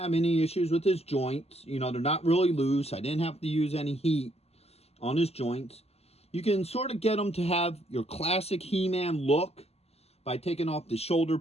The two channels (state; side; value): late; right; 0.30 ms